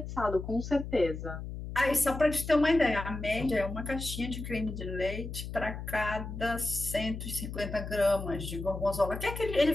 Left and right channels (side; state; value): left; noise; hum, 8 dB below the sound